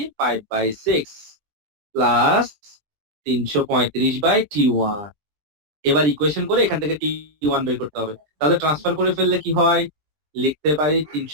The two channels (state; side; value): late; left; 20 ms